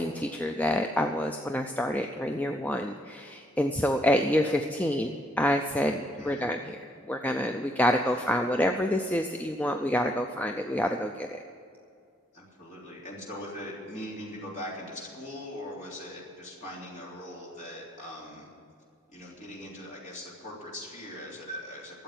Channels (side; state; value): both; normal; correlation 0.72